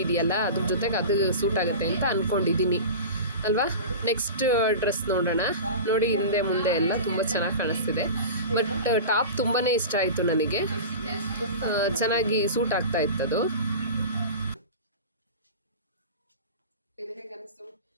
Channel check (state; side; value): inverted; both; correlation -0.31